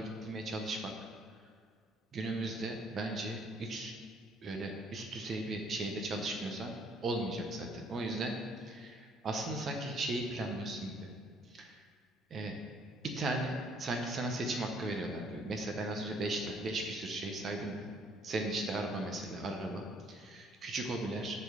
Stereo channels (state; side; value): normal; both; correlation 0.63